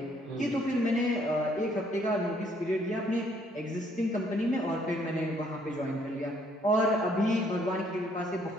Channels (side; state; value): both; normal; correlation 0.66